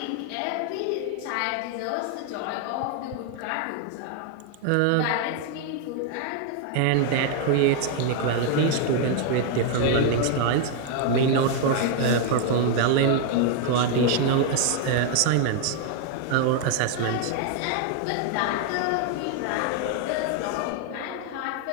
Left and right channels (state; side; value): different; both; correlation 0.00